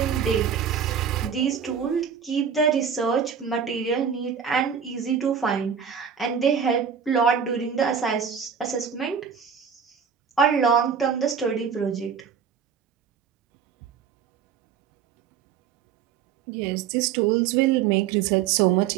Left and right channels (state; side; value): quieter; left; 7.3 dB